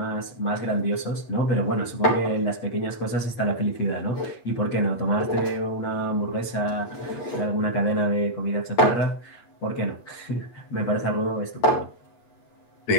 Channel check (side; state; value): right; late; 8.4 ms